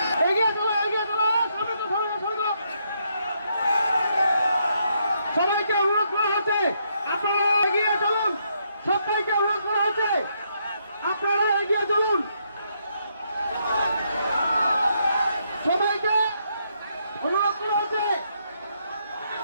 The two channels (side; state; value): both; inverted; correlation -0.76